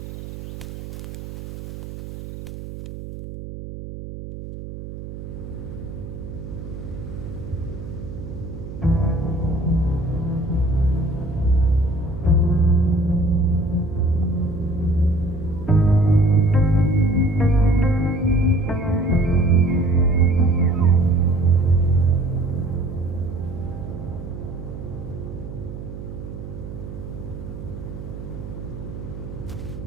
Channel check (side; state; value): right; noise; hum, 10 dB below the sound